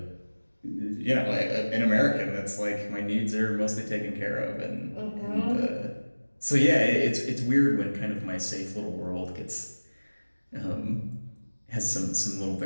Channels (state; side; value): inverted; both; correlation -1.00